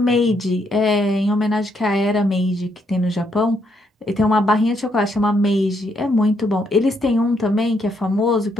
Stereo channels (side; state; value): both; normal; correlation 0.75